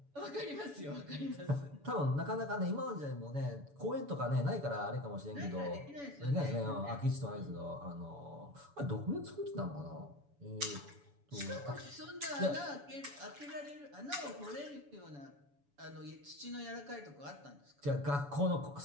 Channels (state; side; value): late; left; 7.0 ms